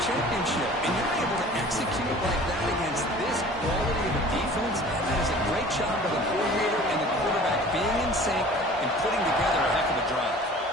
championship. And you're able to execute like that against this quality of a defense. That is a great job by the coordinator and the quarterback being in sync and putting together a heck of a drive.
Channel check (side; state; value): both; normal; correlation 0.45